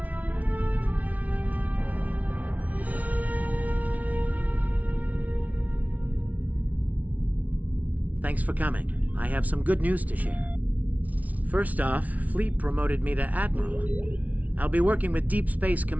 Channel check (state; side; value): late; left; 0.071 ms